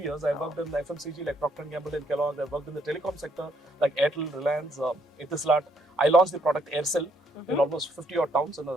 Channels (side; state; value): both; normal; correlation 0.70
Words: years. I've worked in FMCG like Procter & Gamble and Kellogg. I've worked in the telecom sector like Airtel, Reliance, Etisalat. I launched the product Aircel in almost 50 odd towns in